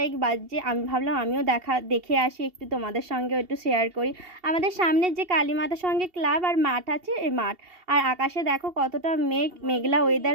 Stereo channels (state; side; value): late; left; 2.7 ms